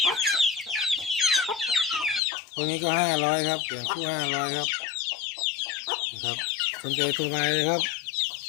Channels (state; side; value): drops out; right; at 2.2 s